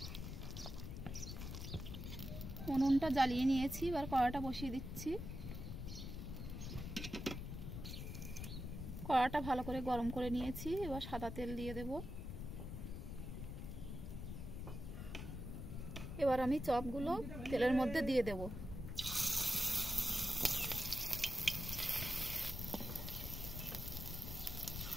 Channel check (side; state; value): left; noise; rumble, 6 dB below the sound